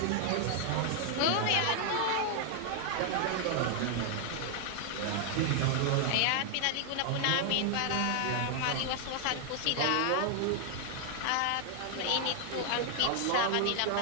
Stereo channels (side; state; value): both; different; correlation 0.00